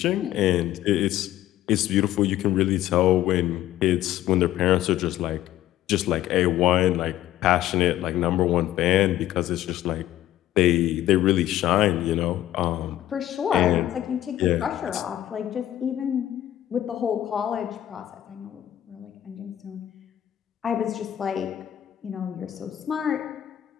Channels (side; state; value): right; quieter; 13.0 dB